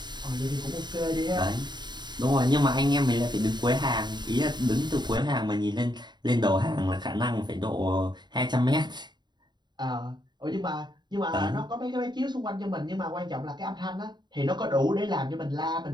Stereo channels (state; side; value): late; left; 0.21 ms